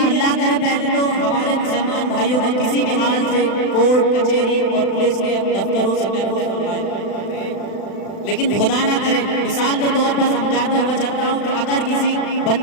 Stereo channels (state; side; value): late; right; 36 ms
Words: اللہ کرے پہلے تو ہمارے مسلمان بھائیوں کو کسی بھی حال سے کورٹ کچہری اور پولیس کے دفتروں سے محفوظ فرمائے، لیکن خدا نہ کرے مثال کے طور پر سمجھاتا ہوا چلتا ہوں کہ اگر کسی